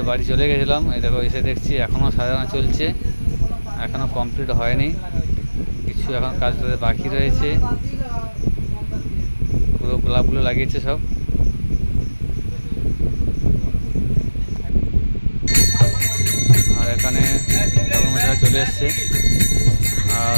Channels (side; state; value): both; inverted; correlation -1.00